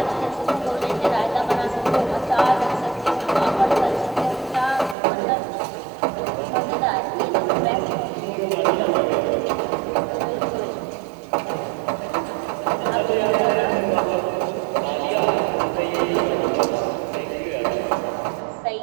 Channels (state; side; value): drops out; left; at 5.0 s